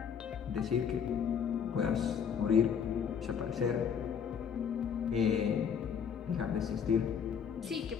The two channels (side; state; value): right; quieter; 7.4 dB